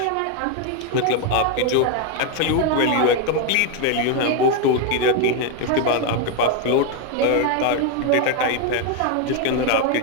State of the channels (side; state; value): both; different; correlation 0.01